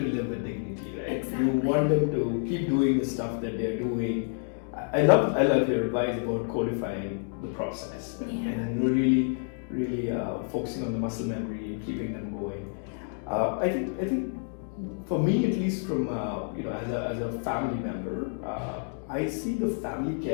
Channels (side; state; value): right; silent; 59 dB below the other